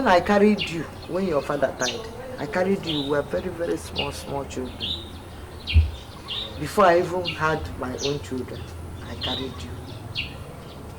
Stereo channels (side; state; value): both; identical; correlation 1.00